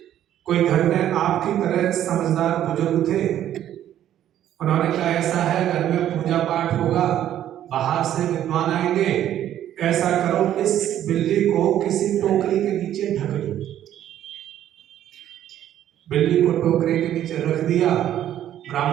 कोई घर में आपकी तरह समझदार बुजुर्ग थे, उन्होंने कहा ऐसा है घर में पूजा पाठ होगा, बाहर से विद्वान आएंगे, ऐसा करो इस बिल्ली को किसी टोकरी के नीचे ढक दो। बिल्ली को टोकरी के नीचे रख दिया,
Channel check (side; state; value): left; quieter; 11.5 dB